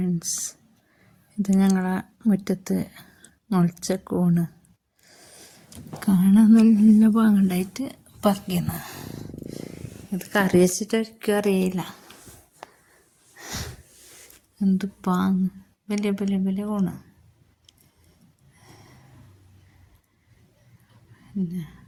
ഇത് ഞങ്ങളെ മുറ്റത്ത് മുളച്ച കൂണ് കാണാൻ നല്ല പാങ്ങുണ്ടായിട്ട് പറിക്കുന്നു. ഇത് കറി വെച്ചിട്ടൊരിക്കും അറിയില്ല. എന്ത് പാങ്ങ്, വലിയ വലിയ വലിയ കൂണ്. പിന്നെ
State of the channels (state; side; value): identical; both; correlation 1.00